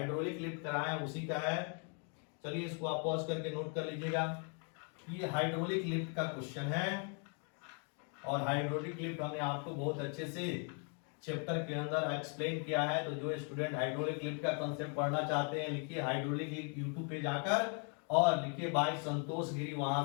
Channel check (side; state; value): right; quieter; 39.8 dB